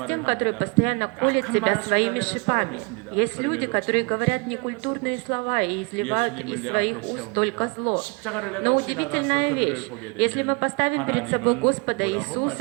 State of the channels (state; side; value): quieter; left; 31.0 dB